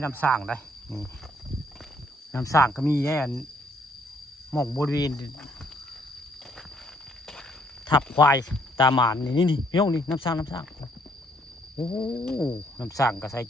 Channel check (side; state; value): both; normal; correlation 0.68